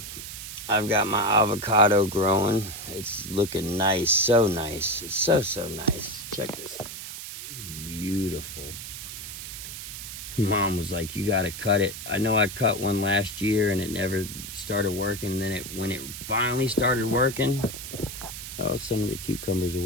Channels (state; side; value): noise; right; hiss, 9 dB below the sound